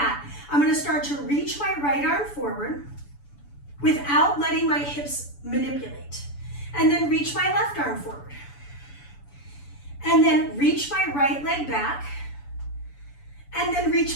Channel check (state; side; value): late; right; 7.0 ms